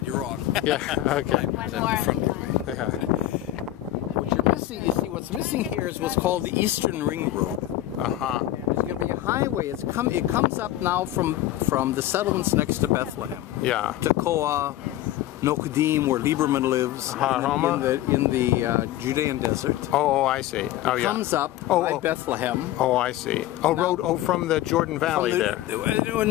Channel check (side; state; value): right; quieter; 14.2 dB